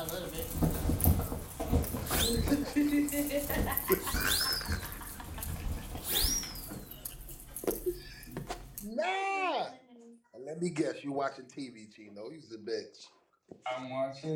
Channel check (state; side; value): identical; both; correlation 1.00